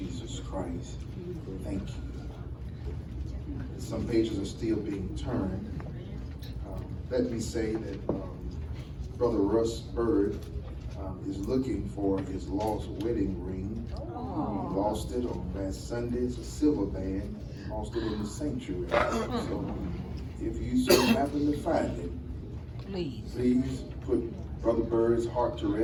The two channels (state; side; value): identical; both; correlation 1.00